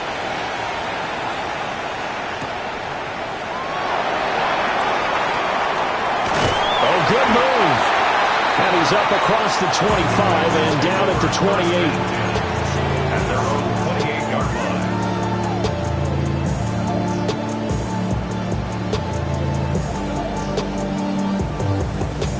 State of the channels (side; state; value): both; identical; correlation 1.00